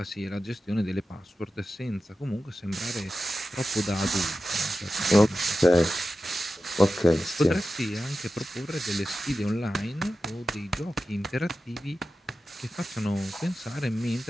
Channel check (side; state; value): both; normal; correlation 0.93